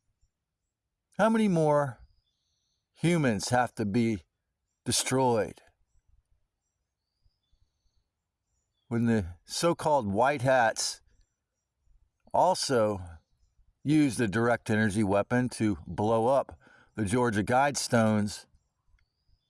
How many more humans have to be destroyed when the so-called white hats also used a direct energy weapon to blow up the Georgia Guidestones?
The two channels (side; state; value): both; identical; correlation 1.00